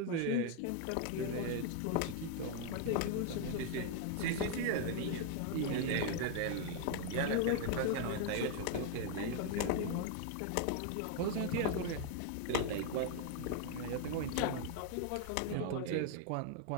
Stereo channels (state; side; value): different; both; correlation 0.00